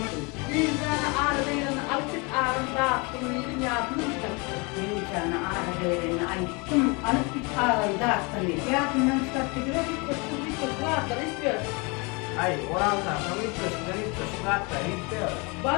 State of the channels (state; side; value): quieter; right; 29.2 dB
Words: Bir tane ağrı değerini alıp ağrını dağıttım. Yedim yardımını mı Bir tane ağrı değerini ayıttım. Alıp bir ağrıyı dağıttım. Yardımdan çıkarttı gibi bir koştum. Bir koşu rahatları istiyor. Ay oran sana ilk köşkü hatta istiyor.